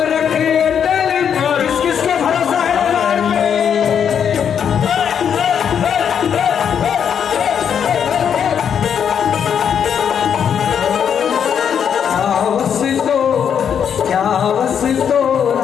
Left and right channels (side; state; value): right; quieter; 8.0 dB